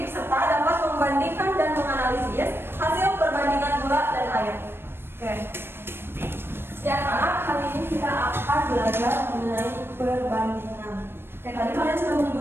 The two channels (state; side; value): late; left; 0.11 ms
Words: serta dapat membandingkan dan menganalisis hasil perbandingan gula dan air. Oke. Ya anak, hari ini kita akan belajar mengenai perbandingan. Kayak tadi kalian sudah